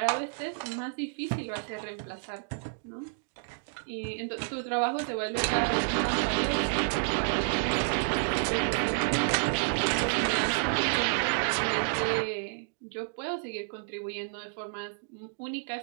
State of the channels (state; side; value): silent; left; digital silence